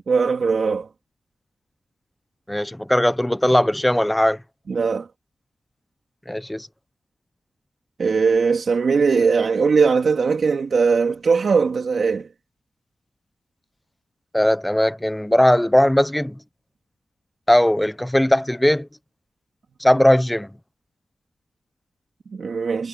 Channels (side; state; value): both; normal; correlation 0.96